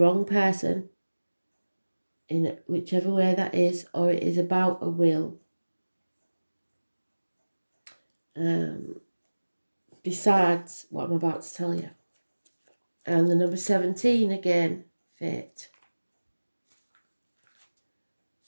person, in whichever way that is, or it is about a will. Besides what I'm about to tell you. And the number 17 again, fate.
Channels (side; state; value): both; inverted; correlation -1.00